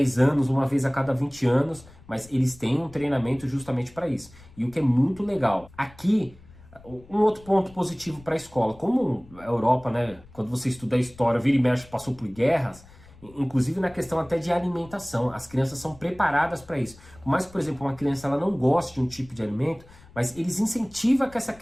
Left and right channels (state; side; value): noise; left; rumble, 23 dB below the sound